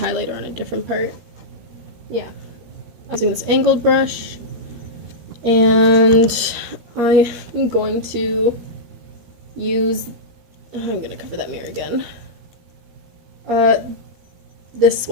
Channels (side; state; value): left; late; 13 ms